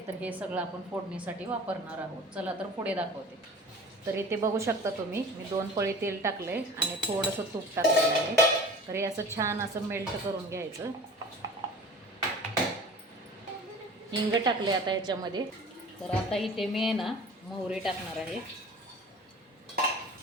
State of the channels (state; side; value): normal; both; correlation 0.42